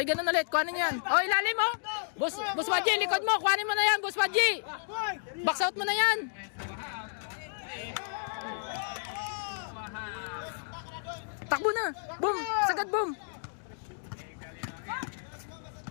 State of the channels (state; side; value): silent; right; digital silence